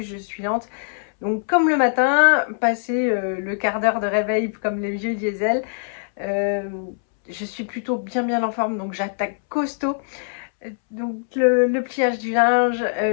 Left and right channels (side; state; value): right; silent; 64 dB below the other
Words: je suis lente. Donc comme le matin, passer le quart d'heure de réveil comme les vieux diesel, je suis plutôt bien en forme, donc j'attaque costaud. Donc le pliage du linge,